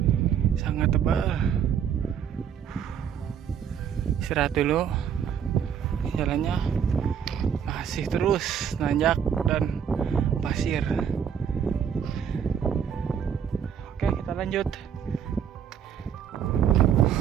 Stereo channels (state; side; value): quieter; left; 8.1 dB